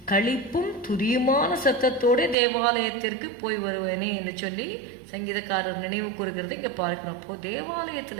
களிப்பும் துதியுமான சத்தத்தோட தேவாலயத்திற்கு போய் வருவேனே என்று சொல்லி சங்கீதக்காரர் நினைவு கூறுகிறது இங்கே பார்க்கிறோம். அப்போ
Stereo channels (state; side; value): drops out; left; at 2.4 s